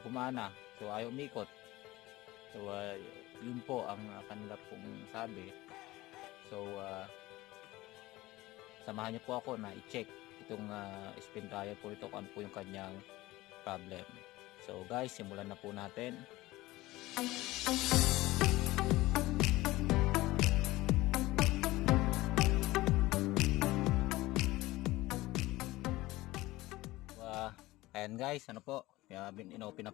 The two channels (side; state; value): right; quieter; 18.8 dB